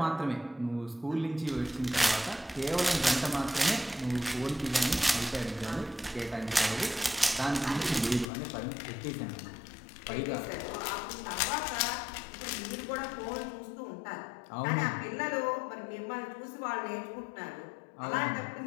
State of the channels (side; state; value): right; drops out; at 8.3 s